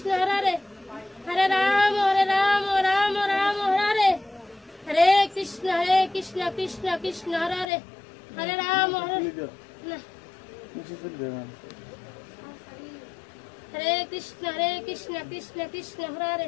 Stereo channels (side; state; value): right; drops out; at 7.7 s